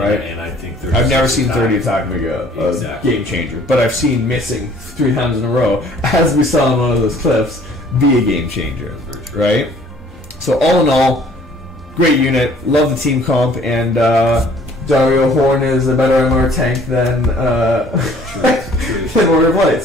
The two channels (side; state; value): both; normal; correlation 0.55